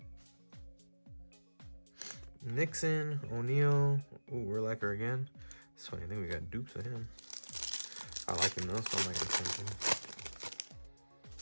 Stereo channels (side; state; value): both; inverted; correlation -1.00